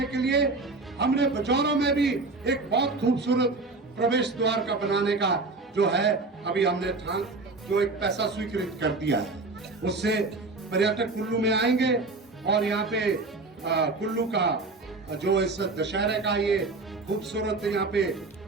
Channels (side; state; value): left; quieter; 3.5 dB